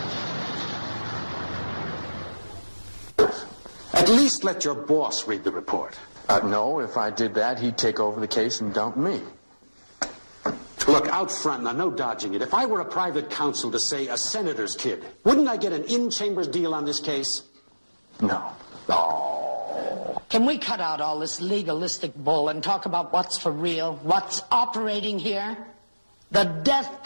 At least let your boss read the report. No, if I did that, he'd take over the case and dump me. Look, out front, now, no dodging it. If I were a private counsel to, say, a senator's kid, wouldn't I get an in-chambers deal on this case? No. Oh. Can we cut out all this legalistic bull and talk about what's for real, what's operating here? The death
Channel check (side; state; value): both; inverted; correlation -1.00